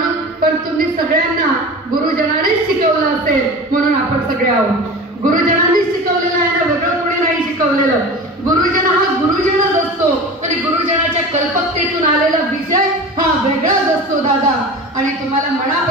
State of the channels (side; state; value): both; normal; correlation 0.33